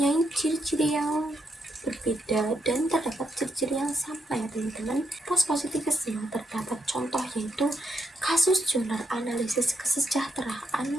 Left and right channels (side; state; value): both; normal; correlation 0.79